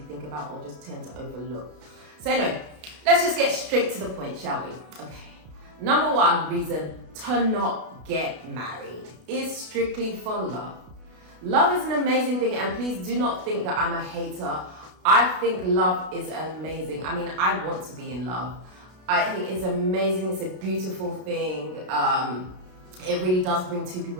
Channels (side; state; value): left; late; 32 ms